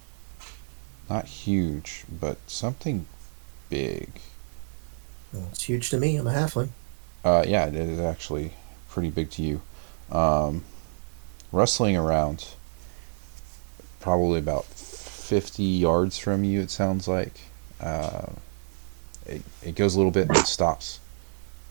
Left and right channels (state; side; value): silent; left; 59 dB below the other